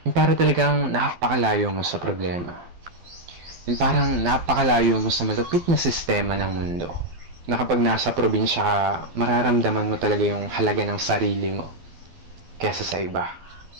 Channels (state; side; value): late; left; 12 ms